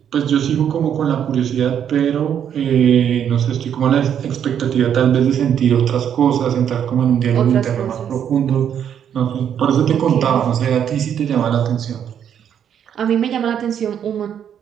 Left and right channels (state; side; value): quieter; left; 8.9 dB